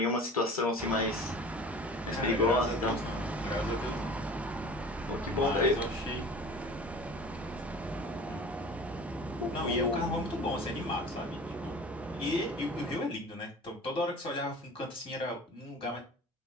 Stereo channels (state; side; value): normal; both; correlation 0.41